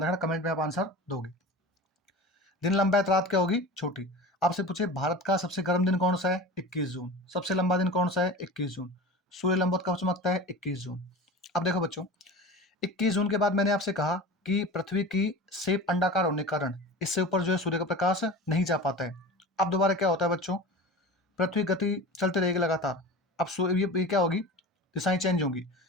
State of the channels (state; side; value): normal; both; correlation 0.33